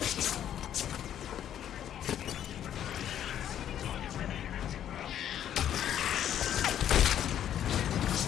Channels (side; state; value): right; quieter; 10.4 dB